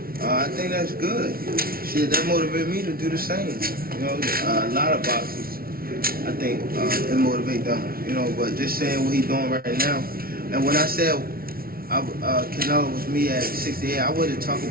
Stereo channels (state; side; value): late; left; 0.43 ms